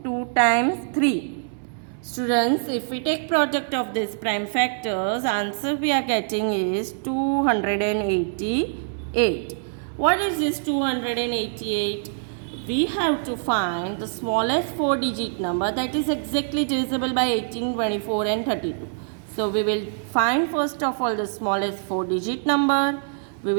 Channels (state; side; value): silent; left; digital silence